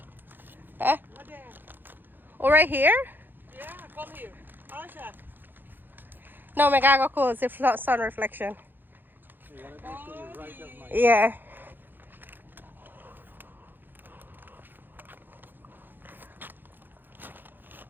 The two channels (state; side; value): late; left; 0.093 ms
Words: Huh? Oh, right here? Yeah, come here. Aisha. No, I gotta go close the sun reflection. Yeah.